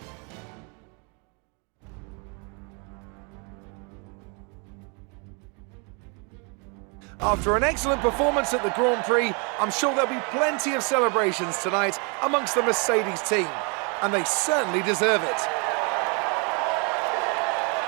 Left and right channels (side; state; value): left; quieter; 34.3 dB